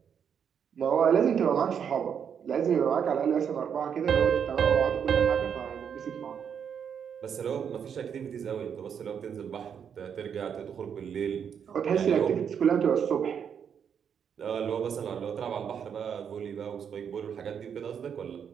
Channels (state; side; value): quieter; left; 7.7 dB